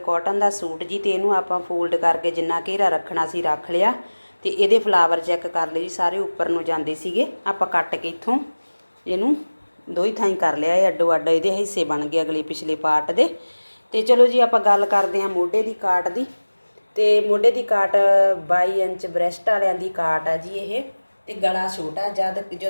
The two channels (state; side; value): inverted; both; correlation -1.00